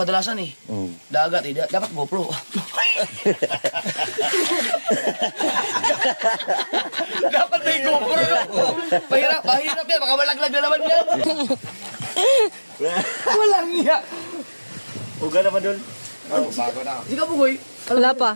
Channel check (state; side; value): inverted; both; correlation -1.00